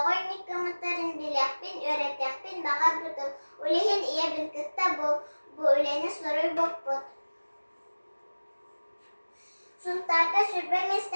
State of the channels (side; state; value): both; inverted; correlation -1.00